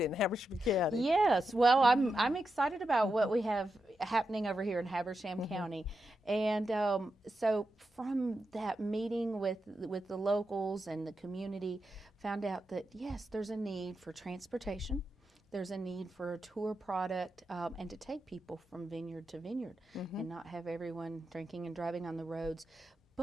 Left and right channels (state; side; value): normal; both; correlation 0.88